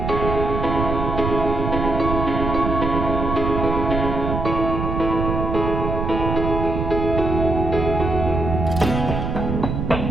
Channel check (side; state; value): right; noise; rumble, 2 dB below the sound